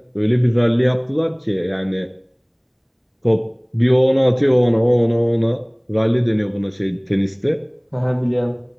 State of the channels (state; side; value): identical; both; correlation 1.00